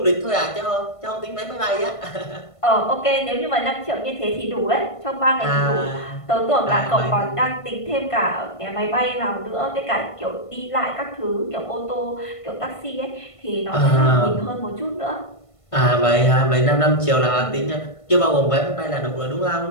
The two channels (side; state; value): right; late; 1.5 ms